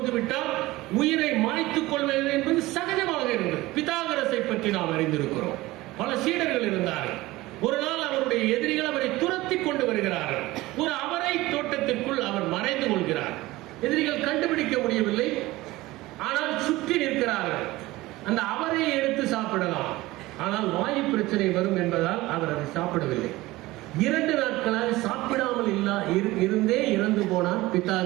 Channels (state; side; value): quieter; left; 18.9 dB